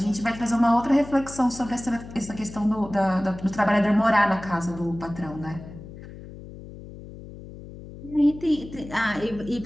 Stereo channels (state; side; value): noise; left; hum, 15 dB below the sound